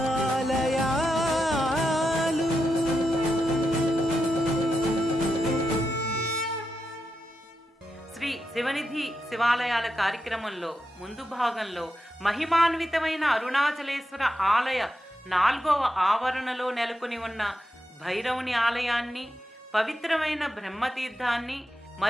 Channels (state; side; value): normal; both; correlation 0.87